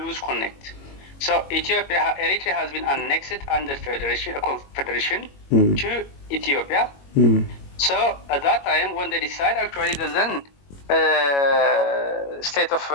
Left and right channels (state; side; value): late; right; 21 ms